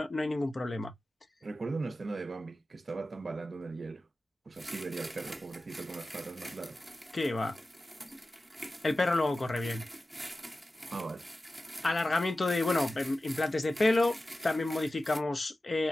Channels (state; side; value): normal; both; correlation 0.95